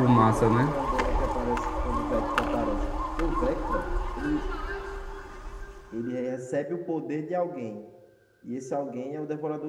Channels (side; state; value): both; identical; correlation 1.00